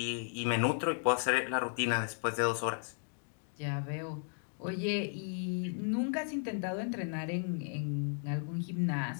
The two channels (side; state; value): right; silent; 54 dB below the other